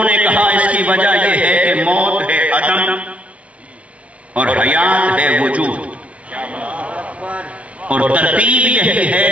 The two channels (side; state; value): left; late; 0.064 ms